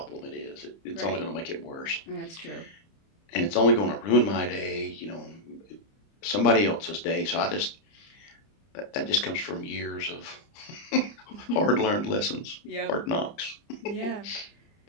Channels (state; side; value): late; right; 30 ms